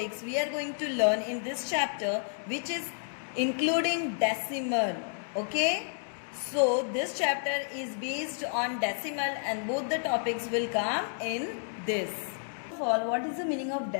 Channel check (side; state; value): right; silent; digital silence